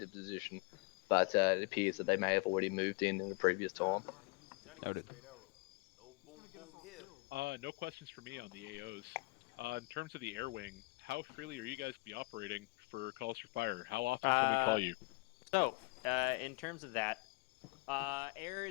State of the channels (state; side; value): quieter; right; 27.6 dB